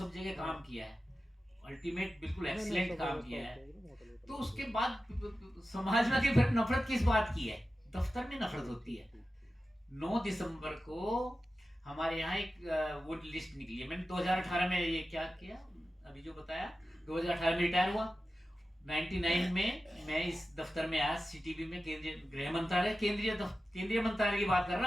जगह काम किया है, अल्टीमेट बिल्कुल एक्सीलेंट काम किया है। तो उसके बाद समाज में फिर नफरत किस बात की है? दफ्तर में नफरत होती है। 9 दिसंबर को हमारे यहाँ एक वो लिस्ट निकली है। मैंने 2018 में ये क्या किया, अभी जो बताया, 2018 में रिटायर हुआ। 99 में मैं इस दफ्तर में आया, सीटीबी में, केंद्रीय गृह मंत्रालय, केंद्रीय मंत्रालय की बात कर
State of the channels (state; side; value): normal; both; correlation 0.93